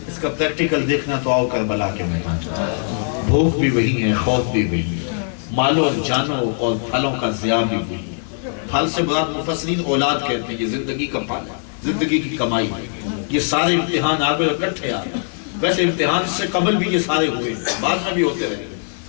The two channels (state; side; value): silent; right; 65 dB below the other